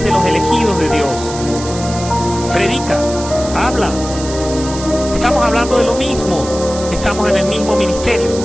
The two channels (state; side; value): noise; right; hiss, 11 dB below the sound